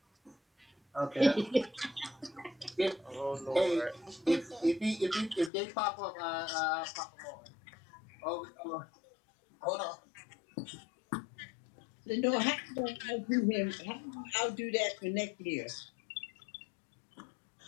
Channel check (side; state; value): right; drops out; at 5.5 s